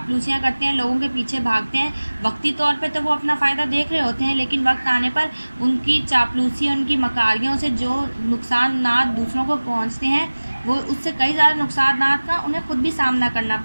करते हैं, लोगों के पीछे भागते हैं, वक्ती तौर पे तो वो अपना फ़ायदा देख रहे होते हैं, लेकिन वक्त आने पर उनकी चापलूसी, उनकी मकारियों से जो नुकसान दूसरों को पहुंचते हैं, वो उससे कई ज़्यादा नुकसान का उन्हें खुद भी सामना करना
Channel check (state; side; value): inverted; both; correlation -1.00